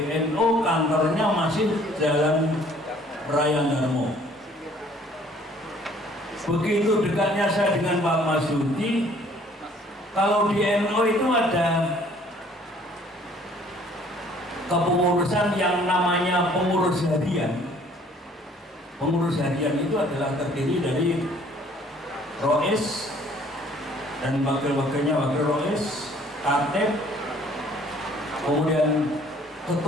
kantornya masih Jalan Raya Darmo. Begitu dekatnya saya dengan Pak Marsudi. Kalau di NO itu ada kepengurusan yang namanya pengurus harian. Pengurus harian itu adalah terdiri dari Rois dan wakil-wakilnya, wakil Rois, Katib, kemudian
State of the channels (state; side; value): normal; both; correlation 0.57